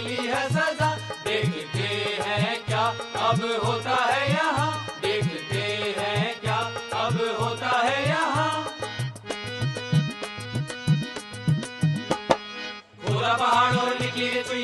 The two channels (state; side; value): identical; both; correlation 1.00